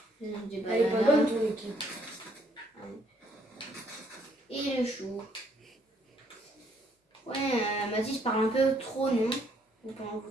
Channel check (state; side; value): normal; both; correlation 0.68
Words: Des Elle est pas bonne ton équipe. Et le chou. Ouais, Mathis parle un peu trop, non? Vous